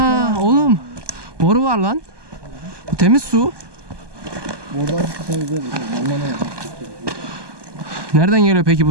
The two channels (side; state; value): left; late; 1.2 ms